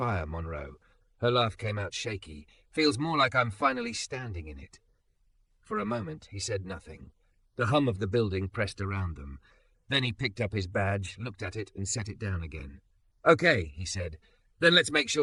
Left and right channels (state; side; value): identical; both; correlation 1.00